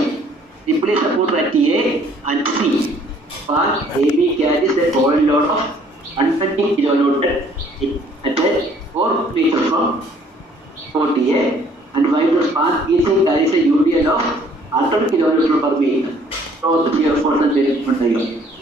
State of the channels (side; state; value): both; normal; correlation 0.59